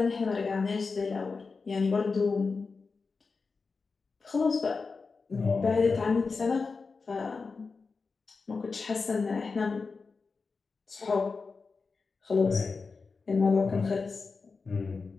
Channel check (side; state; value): right; quieter; 4.5 dB